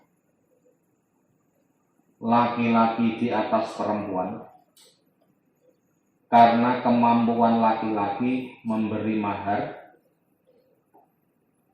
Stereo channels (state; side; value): identical; both; correlation 1.00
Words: laki-laki di atas perempuan karena kemampuan laki-laki memberi mahar